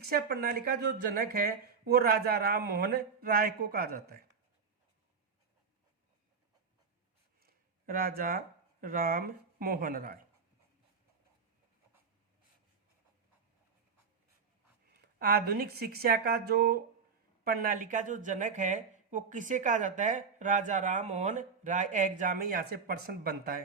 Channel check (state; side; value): quieter; left; 5.7 dB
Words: प्रणाली का जो जनक है वो राजा राम मोहन राय को कहा जाता है। राजा राम मोहन राय। आधुनिक शिक्षा का जो प्रणाली का जो जनक है वो किसे कहा जाता है? राजा राम मोहन राय। एग्जाम में यहां से प्रश्न बनता